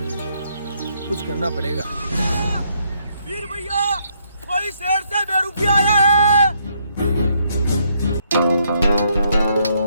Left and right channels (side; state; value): both; inverted; correlation -0.73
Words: कुछ करना पड़ेगा। वीर भैया, कोई शहर से बेरुपी आया है।